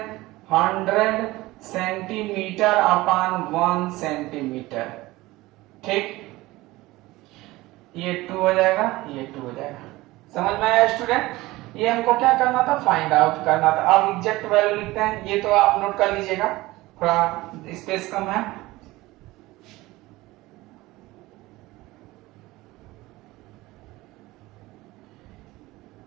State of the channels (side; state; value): left; quieter; 19.3 dB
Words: 100 सेंटीमीटर अपान 1 सेंटीमीटर, ठीक। ये 2 हो जाएगा, ये 2 हो जाएगा। समझ में आया स्टूडेंट। ये हमको क्या करना था फाइंड आउट करना था। अब एग्जैक्ट वैल्यू लिखते हैं, ये तो आप नोट कर लीजिएगा, थोड़ा स्पेस कम है।